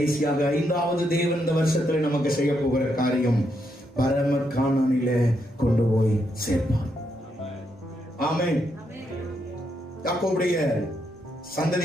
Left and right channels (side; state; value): both; normal; correlation 0.79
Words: 5வது தேவன் இந்த வருஷத்துல நமக்கு செய்ய போகிற காரியம், பரம கானானிலே கொண்டு போய் சேர்ப்பார். ஆமென். யாக்கோபுடைய